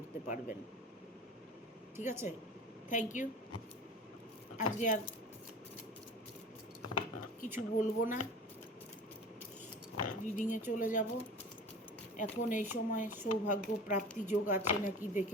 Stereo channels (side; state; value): both; normal; correlation 0.38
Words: পারবেন, ঠিক আছে? Thank you. আজকে আর কিছু বলবো না, রিডিংয়ে চলে যাব। এখন এই সময় সৌভাগ্য প্রাপ্তি যোগ আছে নাকি